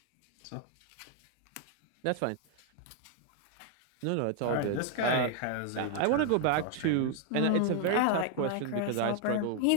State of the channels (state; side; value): different; both; correlation 0.00